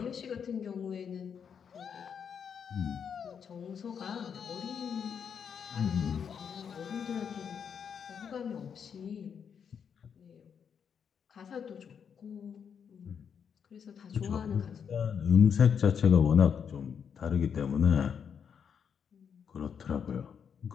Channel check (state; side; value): quieter; right; 7.3 dB